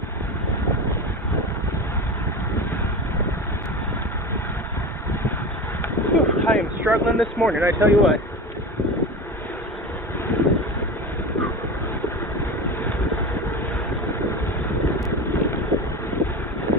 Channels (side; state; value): both; normal; correlation 0.28